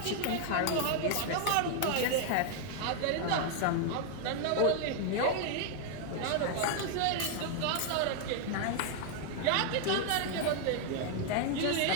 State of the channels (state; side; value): different; both; correlation 0.00